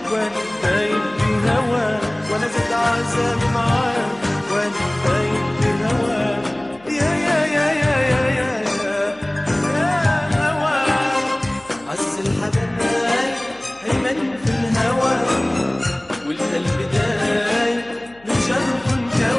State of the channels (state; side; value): noise; left; hum, 28 dB below the sound